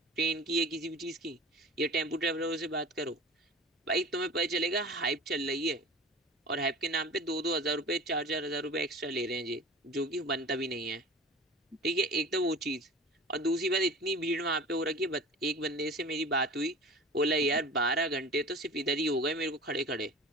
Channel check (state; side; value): normal; both; correlation 0.39